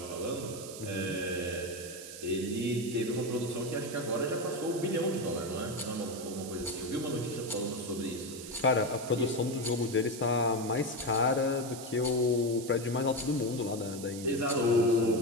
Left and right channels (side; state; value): right; noise; hiss, 12 dB below the sound